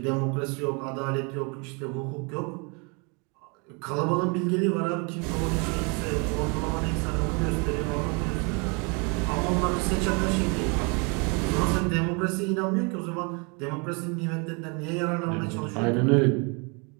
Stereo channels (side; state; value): left; quieter; 32.6 dB